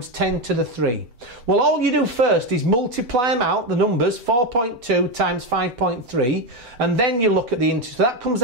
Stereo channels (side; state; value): left; late; 8.0 ms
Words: 10 to the 3. Well, all you do first is multiply them out, the numbers, 4.2 times 5.3, and then you look at the integers. So that comes